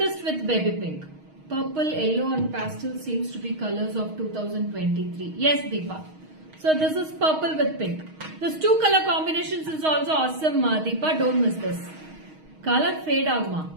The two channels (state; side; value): late; left; 6.4 ms